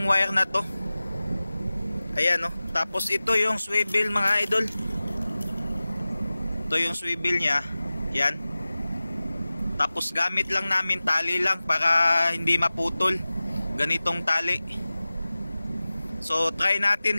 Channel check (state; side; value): inverted; both; correlation -0.97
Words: wire na to. Ayan, no. Tapos ito yung swivel mga idol. Ito yung swivel niya. Yan. Tapos gamit lang namin tali lang para hindi maputol. Ganitong tali. So try